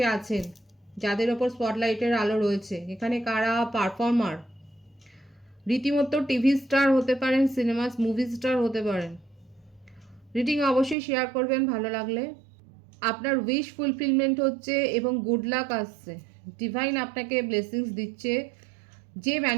আছেন, যাদের ওপর স্পটলাইটের আলো রয়েছে। এখানে কারা পারফর্মার, রীতিমতো টিভি স্টার হতে পারেন, সিনেমা মুভি স্টার হতে পারেন। রিডিং অবশ্যই শেয়ার করবেন ভালো লাগলে। আপনার উইশ ফুলফিলমেন্ট হচ্ছে এবং গুড লাক আসছে, ডিভাইন আপনাকে ব্লেসিংস দিচ্ছে। যে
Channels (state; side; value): drops out; left; at 11.0 s